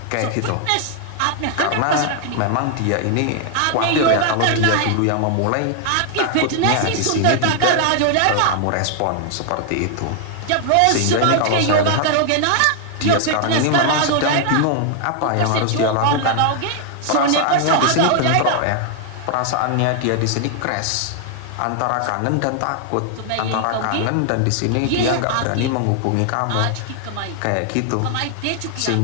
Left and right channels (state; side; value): different; both; correlation 0.00